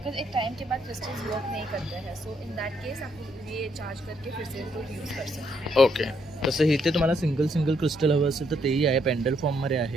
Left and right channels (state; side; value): normal; both; correlation 0.73